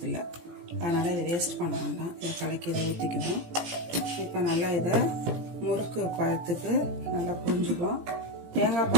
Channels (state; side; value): late; left; 17 ms